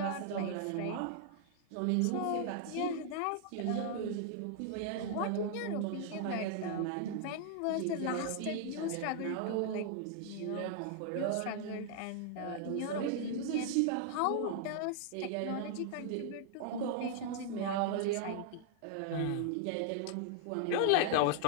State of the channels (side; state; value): both; different; correlation 0.00